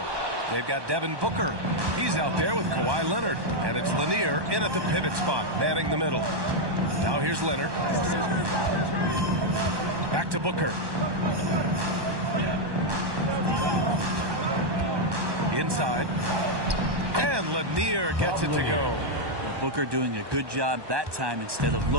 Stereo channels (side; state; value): left; late; 1.2 ms